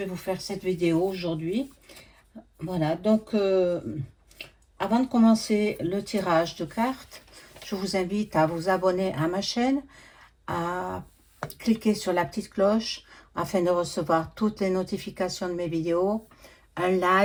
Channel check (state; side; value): identical; both; correlation 1.00